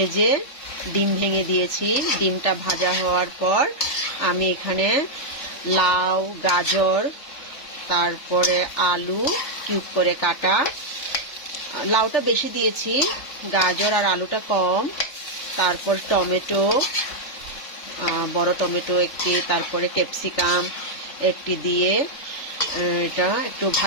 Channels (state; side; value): late; right; 3.4 ms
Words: ডিম ভেঙে দিয়েছি। ডিমটা ভাজা হওয়ার পর আমি এখানে লাউ, গাজর, তারপরে আলু কিউব করে কাটা, লাউটা বেশি দিয়েছি, গাজর আর আলুটা কম, তারপর টমেটো, বড় টমেটো একটি, তারপরে ক্যাপসিকাম একটি দিয়ে এটা একটু